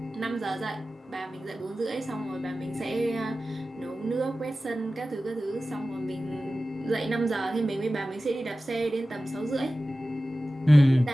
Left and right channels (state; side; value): normal; both; correlation 0.95